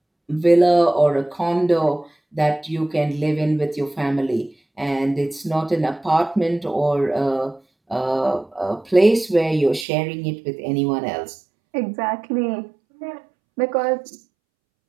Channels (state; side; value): drops out; left; at 9.9 s